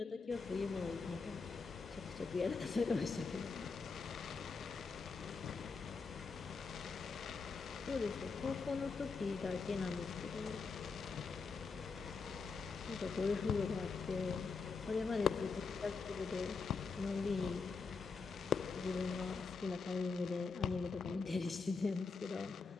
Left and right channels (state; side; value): quieter; right; 4.7 dB